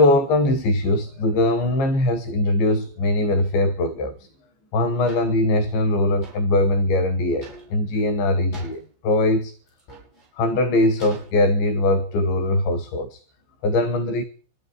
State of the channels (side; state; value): right; late; 14 ms